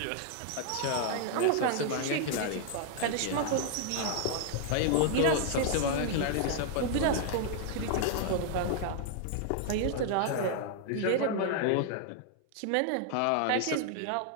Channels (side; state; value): both; different; correlation 0.00